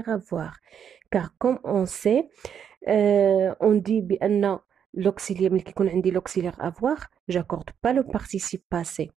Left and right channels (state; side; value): quieter; left; 8.1 dB